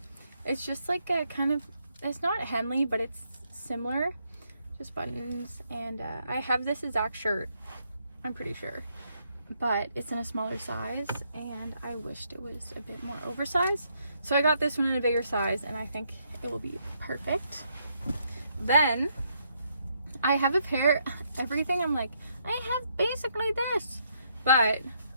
It's just like a kind of, it's not Henley, but it's similar. Just buttons. And I have this exact shirt, I'm pretty sure. But it's in a smaller size, and I wished it was a bit more oversized. So I got this one in a bigger size, and I think it will be perfect. Then I have a pair, everything I'm like, I have basically this, but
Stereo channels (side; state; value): both; inverted; correlation -0.74